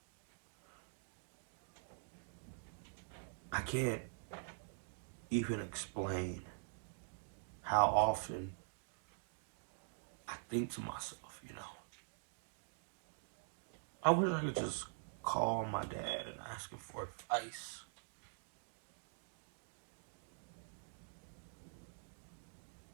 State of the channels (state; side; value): silent; left; digital silence